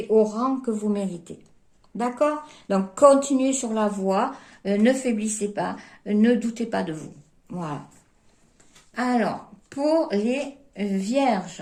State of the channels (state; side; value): identical; both; correlation 1.00